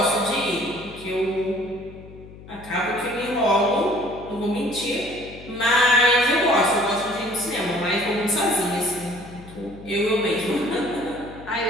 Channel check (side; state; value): left; noise; hum, 18 dB below the sound